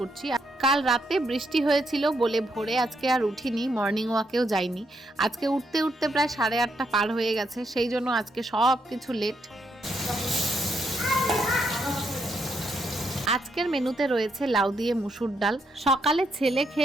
কাল রাতে বৃষ্টি হয়েছিল বলে ভোরে আজকে আর উঠিনি, মর্নিং ওয়াকেও যাইনি। আজকে উঠতে উঠতে প্রায় 8:30 পার হয়ে গেছে, সেই জন্য আজকে সব কিছু লেট। আজকের মেনুতে রয়েছে লাউ দিয়ে মুসুর ডাল। সকালে ছেলে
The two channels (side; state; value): both; normal; correlation 0.78